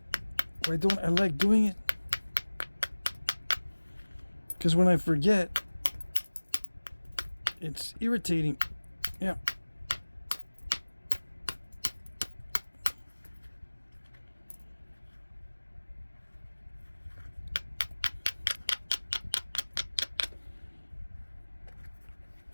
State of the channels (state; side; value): inverted; both; correlation -1.00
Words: Why don't I like doing it? Because when I forget, it's irritating. Yeah.